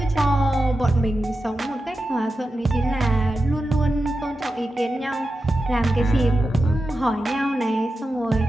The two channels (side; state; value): both; normal; correlation 0.91